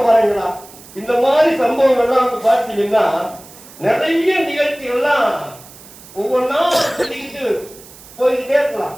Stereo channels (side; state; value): right; noise; hiss, 20 dB below the sound